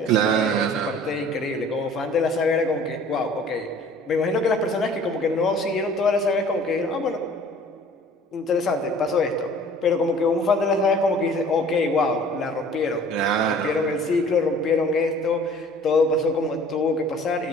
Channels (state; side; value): normal; both; correlation 0.50